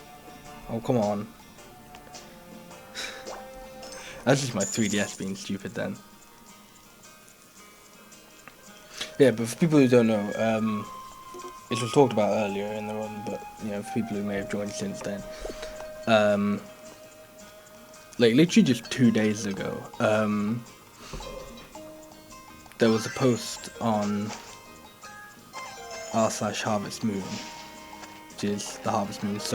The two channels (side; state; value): both; identical; correlation 1.00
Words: Oh, come on. That's just my 3DS being stupid then. Yeah, but for people who don't know, it was talked about earlier in the run, but, you know, for people who may have joined since then, like, literally just 2 days ago, there was a post on r/HarvestMoon, which is the Harvest Moon